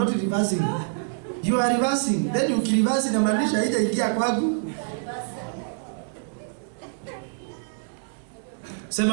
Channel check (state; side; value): silent; left; digital silence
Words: reversing. You are reversing. Then you reverse na maanisha haijaingia kwangu.